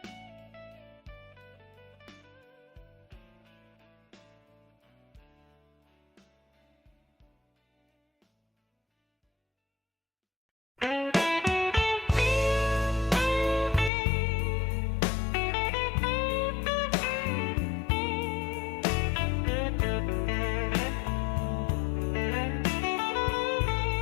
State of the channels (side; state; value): right; drops out; at 13.9 s